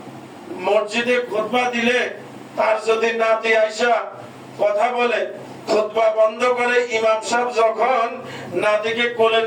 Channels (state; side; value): identical; both; correlation 1.00